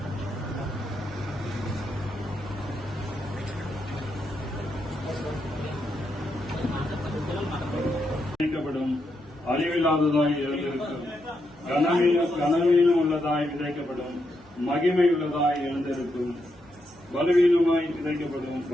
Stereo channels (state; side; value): normal; both; correlation 0.82